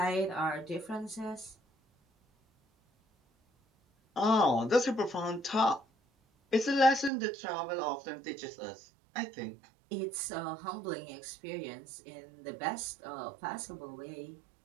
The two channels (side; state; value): left; drops out; at 7.1 s